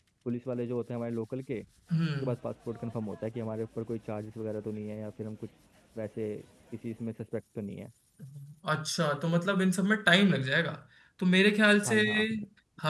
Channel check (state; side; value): identical; both; correlation 1.00